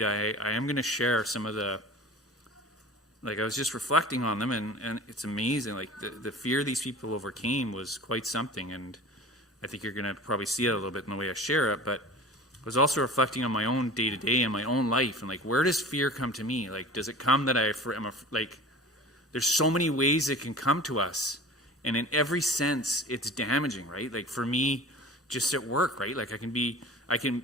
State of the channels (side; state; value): both; normal; correlation 0.39